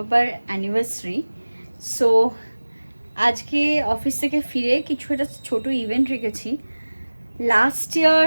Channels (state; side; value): inverted; both; correlation -1.00